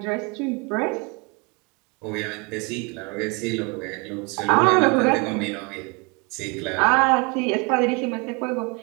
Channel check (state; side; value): quieter; left; 30.2 dB